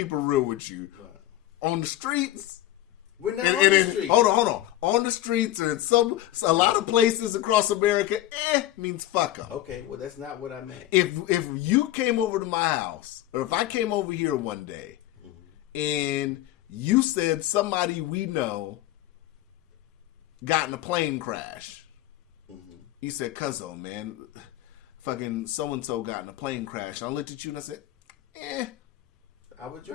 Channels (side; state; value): right; quieter; 14.3 dB